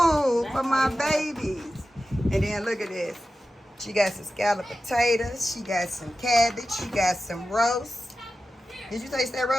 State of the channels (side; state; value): both; normal; correlation 0.93